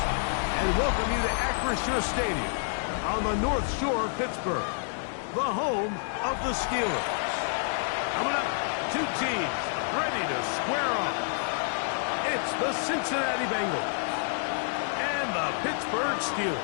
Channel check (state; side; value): silent; right; digital silence